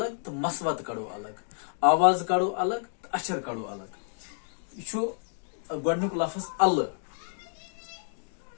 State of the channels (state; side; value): silent; right; digital silence